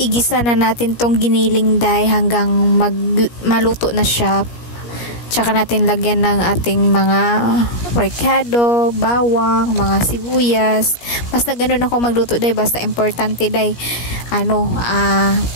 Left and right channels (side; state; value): right; late; 17 ms